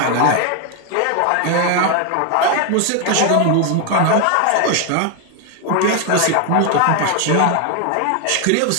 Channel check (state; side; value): different; both; correlation 0.01